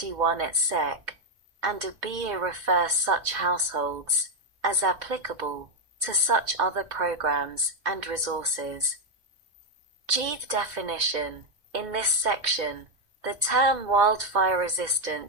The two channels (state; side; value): late; left; 2.2 ms